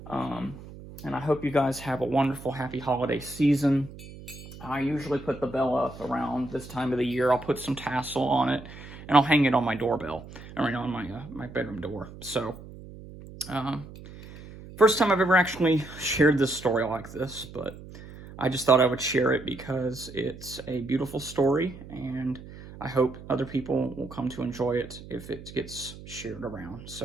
And I hope you guys have a wonderful, happy holiday season. I usually put the bell up around this time of the year. I'll put some tassel on it, and I'll hang it on my doorbell, or on my bedroom door. So, first time I've ever actually shared this story like this, but I just thought I would share it because it's a beautiful story, and I hope other people will come to enjoy it if it gets shared around.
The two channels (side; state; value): right; noise; hum, 16 dB below the sound